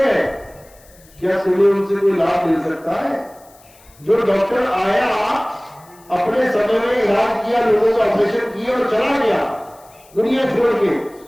गए, क्या तुम्हें उनसे कोई लाभ मिल सकता है? जो डॉक्टर आया, अपने समय में इलाज किया, लोगों का ऑपरेशन किया और चला गया दुनिया छोड़ के,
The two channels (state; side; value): noise; left; hiss, 27 dB below the sound